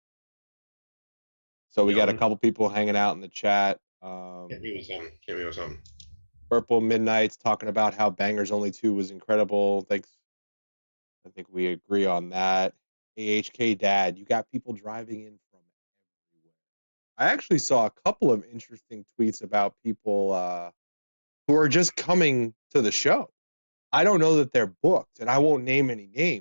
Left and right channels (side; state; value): both; inverted; correlation -1.00